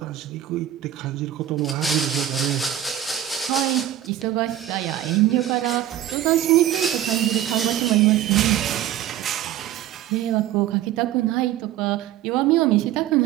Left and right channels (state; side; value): quieter; left; 12.0 dB